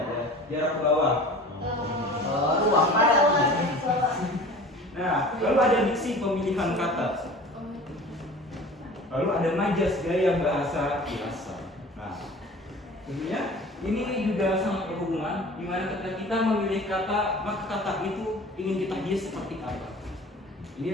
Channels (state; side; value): normal; both; correlation 0.41